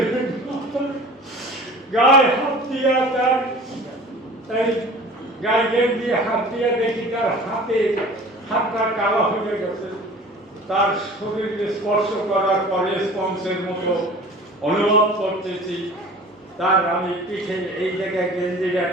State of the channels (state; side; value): normal; both; correlation 0.43